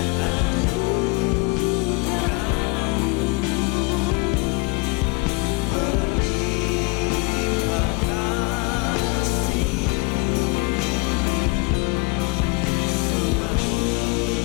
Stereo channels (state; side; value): quieter; right; 27.1 dB